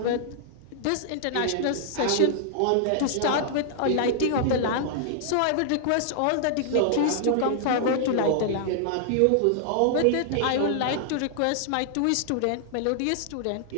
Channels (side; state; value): both; different; correlation -0.01